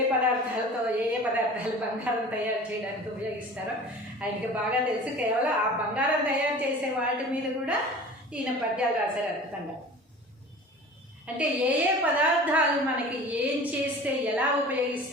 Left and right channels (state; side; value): normal; both; correlation 0.40